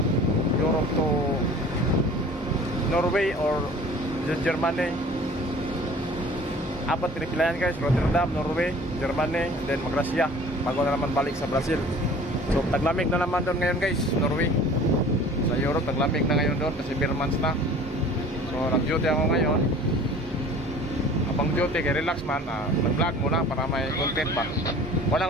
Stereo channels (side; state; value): both; normal; correlation 0.46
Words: to Norway or Germany. Apat pinipilayan guys, Rotterdam, Norway, Germany, then mag-Russia bago na naman balik sa Brazil. So taglamig na naman doon ngayon guys, Norway. Sa Europe taglamig na ngayon doon kasi beer months na. So nag-duty ako ngayon. Abang duty kay relax man, nag-vlog muna para may content pa.